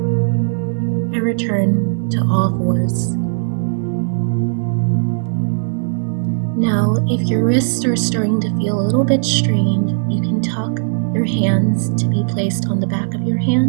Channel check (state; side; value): silent; left; 65 dB below the other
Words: and return to all fours. Now, if your wrists are starting to feel a little bit strained, you can tuck your hands to be placed on the back of your